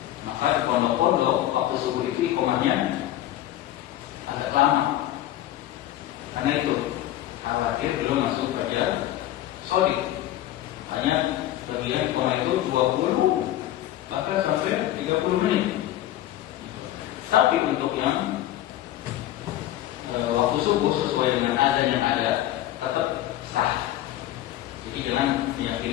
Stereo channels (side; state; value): right; quieter; 13.6 dB